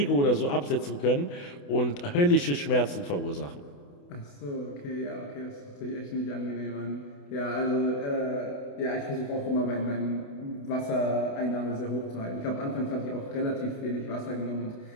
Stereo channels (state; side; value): late; right; 28 ms